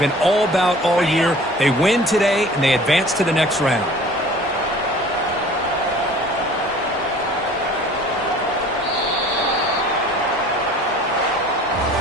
all about all year. They win today, and they advance to the next round.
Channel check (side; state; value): both; normal; correlation 0.47